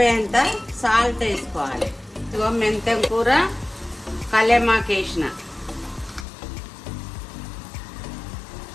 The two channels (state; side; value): drops out; right; at 6.2 s